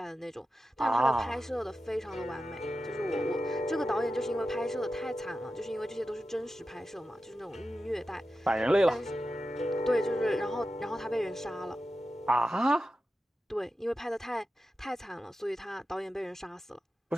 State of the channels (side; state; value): both; normal; correlation 0.92